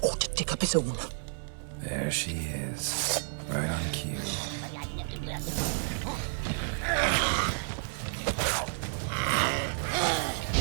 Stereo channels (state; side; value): silent; left; digital silence